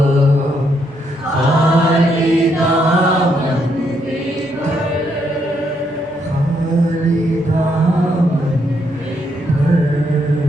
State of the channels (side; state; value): both; normal; correlation 0.75